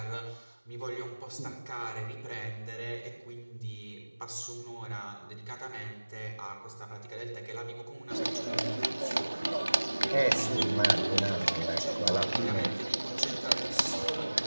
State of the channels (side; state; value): both; inverted; correlation -1.00